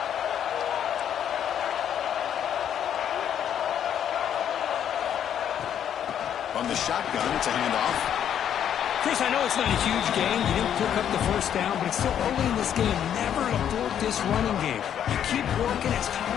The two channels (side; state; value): right; quieter; 9.5 dB